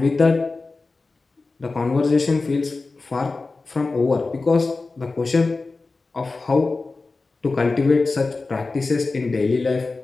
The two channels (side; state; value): right; quieter; 3.7 dB